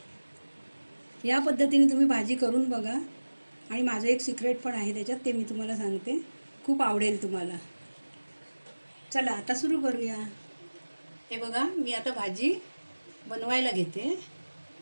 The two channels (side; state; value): both; inverted; correlation -1.00